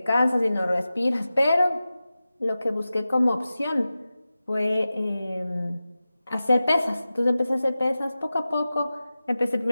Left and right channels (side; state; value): both; inverted; correlation -0.95